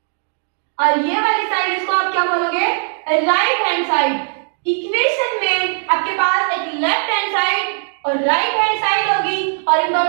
और ये वाली साइड इसको आप क्या बोलोगे? Right hand side. इक्वेशन में आपके पास एक लेफ्ट हैंड साइड और राइट हैंड साइड होगी और इन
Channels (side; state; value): left; silent; 60 dB below the other